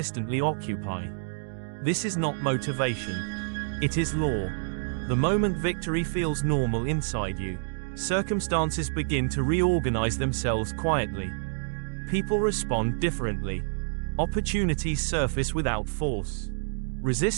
occupy. This is not motivation. It is law. The moment victory feels normal inside you, circumstances begin to reorganize themselves quietly. People respond differently. Opportunities surface without force.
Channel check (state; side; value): silent; left; digital silence